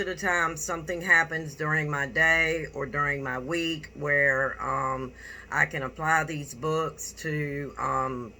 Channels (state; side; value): identical; both; correlation 1.00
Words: the time something happens during my day or during my week where I can apply these books to